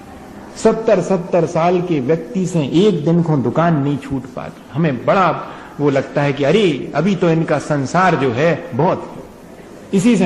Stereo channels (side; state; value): both; identical; correlation 1.00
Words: 70 साल के व्यक्ति से एक दिन को दुकान नहीं छूट पाती। हमें बड़ा वो लगता है कि अरे अभी तो इनका संसार जो है बहुत, इसी